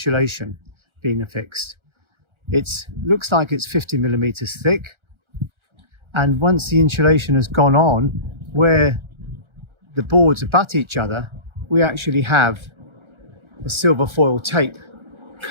being affixed. It looks like it's 50 millimeters thick. And once the insulation has gone on, where the boards abut each other, we actually have a silver foil tape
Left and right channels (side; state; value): left; late; 1.4 ms